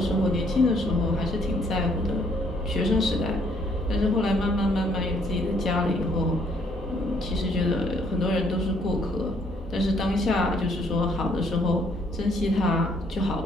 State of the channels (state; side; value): normal; both; correlation 0.66